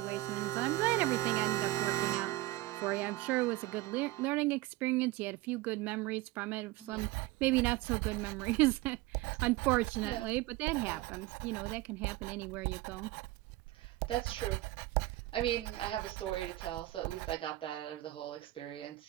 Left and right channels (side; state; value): left; quieter; 18.6 dB